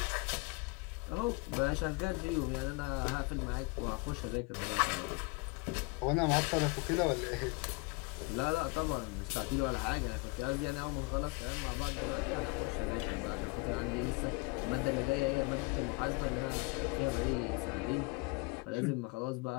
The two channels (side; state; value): right; quieter; 27.5 dB